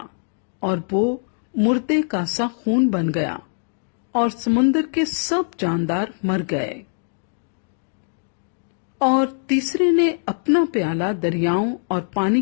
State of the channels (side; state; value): right; silent; digital silence